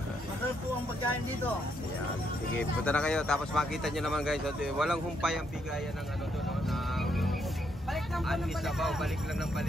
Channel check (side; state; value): both; normal; correlation 0.76